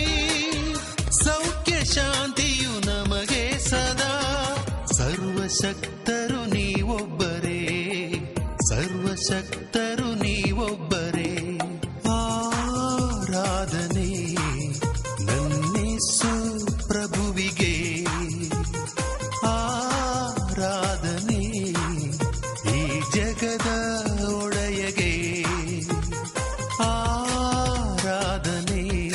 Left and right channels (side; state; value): both; identical; correlation 1.00